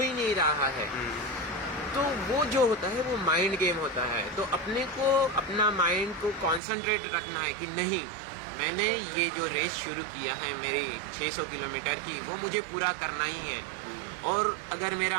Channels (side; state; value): left; drops out; at 6.6 s